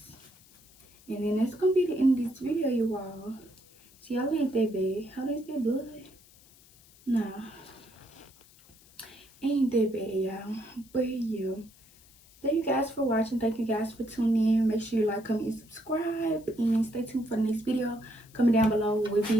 And then that's gonna be the end of this video, you all. See, y'all ain't that bad. How is that blood? Nah. Ain't that bad, y'all. But yeah. Thank you guys for watching. Thank you guys for tuning in. Make sure you like, comment, and subscribe. And stay tuned for the next video. Comment down below what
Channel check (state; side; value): noise; left; hiss, 26 dB below the sound